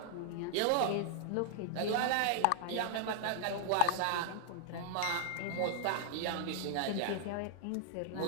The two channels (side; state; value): both; different; correlation -0.01